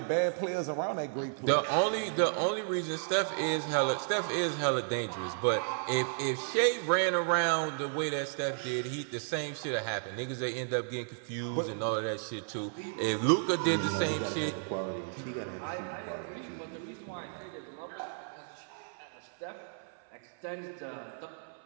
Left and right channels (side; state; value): left; silent; 56 dB below the other